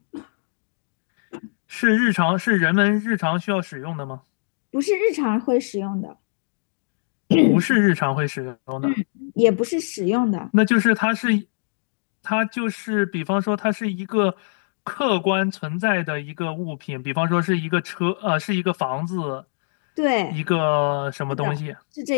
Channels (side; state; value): right; silent; digital silence